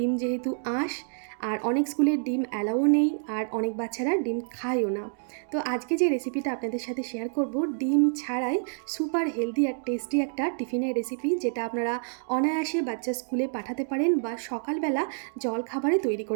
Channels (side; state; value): left; silent; 59 dB below the other